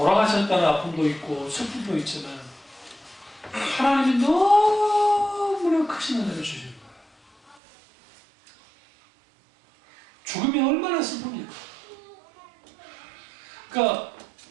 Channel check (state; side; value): drops out; left; at 7.6 s